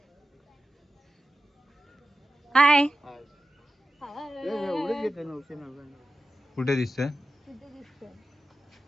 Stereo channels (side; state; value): both; normal; correlation 0.94